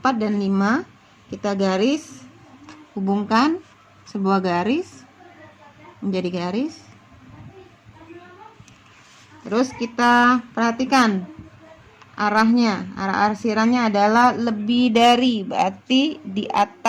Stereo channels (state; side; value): identical; both; correlation 1.00